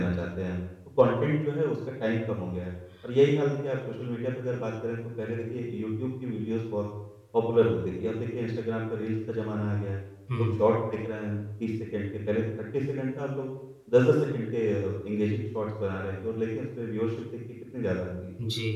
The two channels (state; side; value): identical; both; correlation 1.00